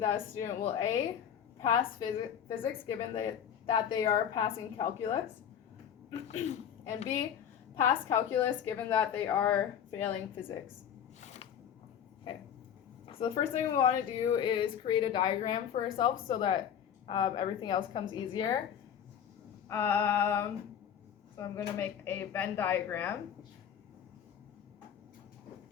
a student will A, pass physics given that they are passing calculus, and B, pass calculus given that they are failing physics. Okay, so the first thing we want to do is create a diagram for ourselves so that everything else comes easier. So I'm going to make a Venn diagram.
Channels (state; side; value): quieter; right; 8.8 dB